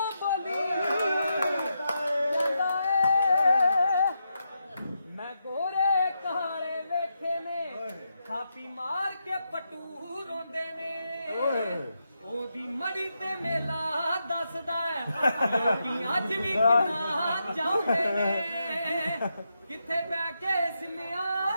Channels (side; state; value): both; inverted; correlation -0.84